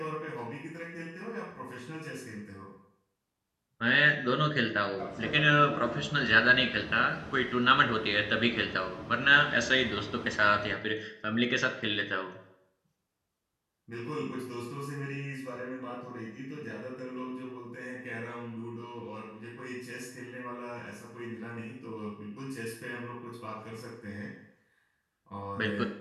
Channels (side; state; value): both; identical; correlation 1.00